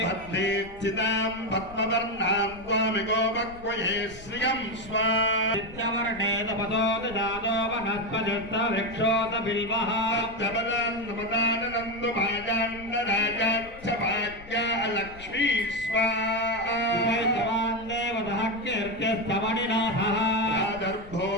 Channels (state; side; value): noise; left; rumble, 19 dB below the sound